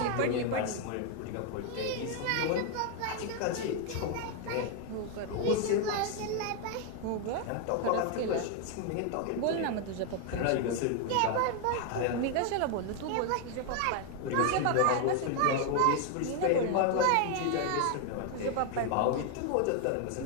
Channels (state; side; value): different; both; correlation 0.01